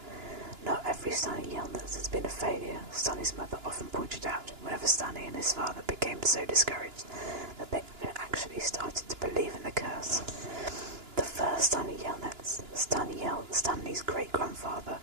Not every Stanley Yelnats has been a failure, Stanley's mother often pointed out whenever Stanley and his father became so discouraged that they actually started to believe in the curse. The first Stanley Yelnats, Stanley's great-grandfather,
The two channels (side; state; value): left; late; 2.9 ms